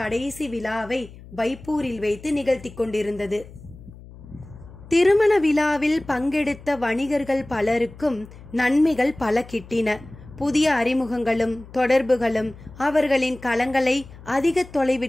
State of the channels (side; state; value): left; noise; hum, 19 dB below the sound